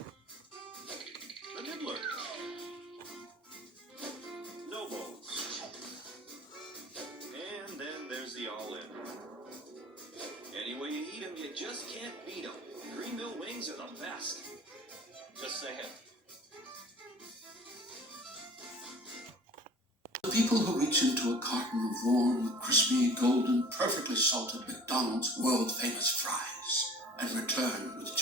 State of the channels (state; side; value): normal; both; correlation 0.45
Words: The nibbler. No bones. And then there's the all-in. Any way you eat them, you just can't beat them. Green Mill wings are the best. Just saying. The people who reach into a carton of warm, crispy, golden, perfectly salted McDonald's world-famous fries and return with